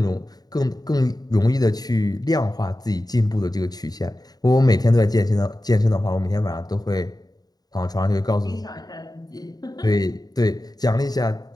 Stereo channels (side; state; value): right; late; 0.19 ms